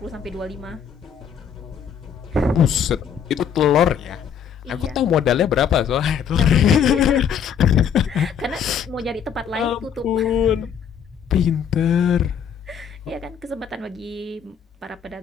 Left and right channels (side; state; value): right; quieter; 7.7 dB